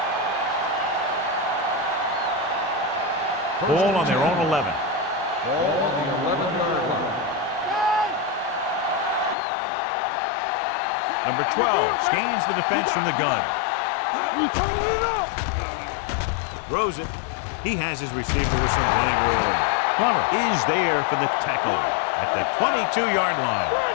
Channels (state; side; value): drops out; right; at 9.3 s